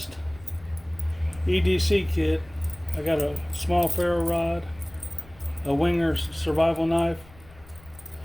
EDC kit. I got a small ferro rod, a Winger survival knife.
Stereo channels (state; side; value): noise; left; rumble, 23 dB below the sound